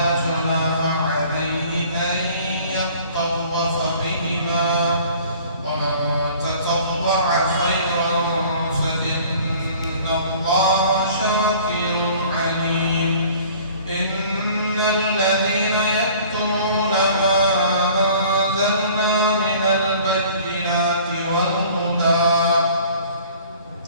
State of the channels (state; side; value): inverted; both; correlation -0.50